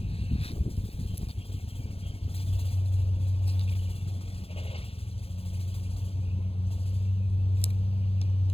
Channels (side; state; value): right; late; 0.28 ms